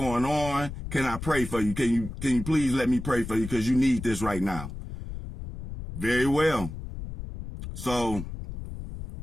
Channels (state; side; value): noise; left; rumble, 9 dB below the sound